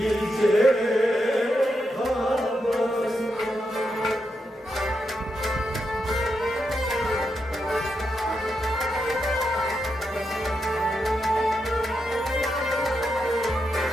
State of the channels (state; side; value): normal; both; correlation 0.84